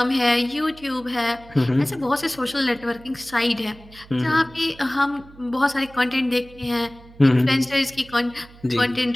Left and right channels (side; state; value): right; noise; hum, 22 dB below the sound